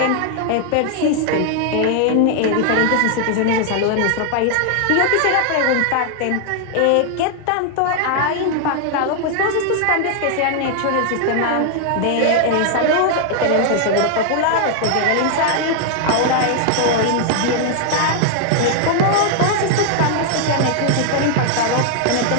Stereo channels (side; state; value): both; different; correlation 0.00